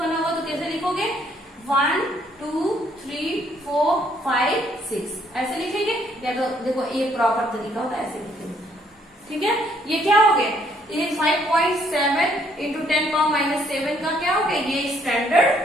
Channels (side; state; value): both; normal; correlation 0.67